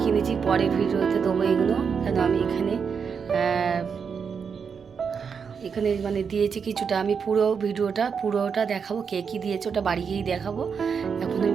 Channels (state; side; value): quieter; left; 6.3 dB